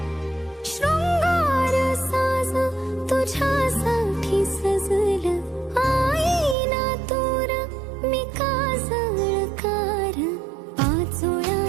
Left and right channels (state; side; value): drops out; left; at 6.6 s